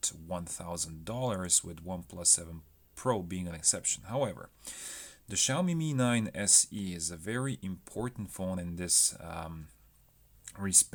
$1,000, with OnePlus 7 Pro being an exception. However, the Xiaomi Mi 9 SE is a very important phone in this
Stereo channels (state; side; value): identical; both; correlation 1.00